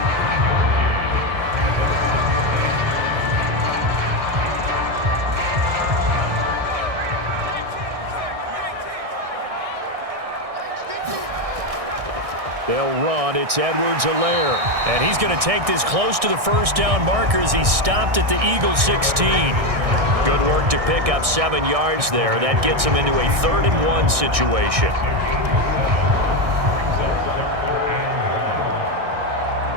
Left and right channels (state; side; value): late; left; 1.6 ms